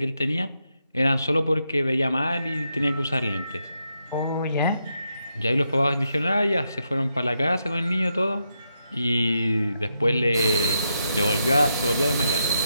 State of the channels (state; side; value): inverted; both; correlation -0.82